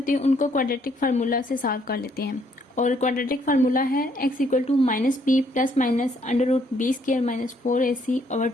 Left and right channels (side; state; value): both; normal; correlation 0.68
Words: उनको क्वाड्रेटिक फार्मूला से सॉल्व कर लेते हैं। और क्वाड्रेटिक फार्मूला है x equal to minus b plus minus under root b square minus 4ac over